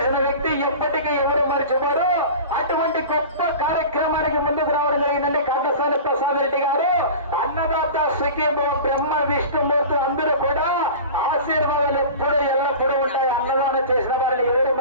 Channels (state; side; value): inverted; both; correlation -0.35